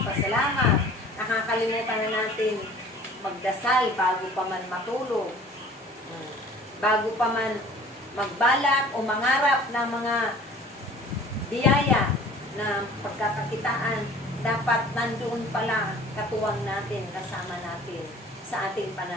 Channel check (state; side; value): normal; both; correlation 0.48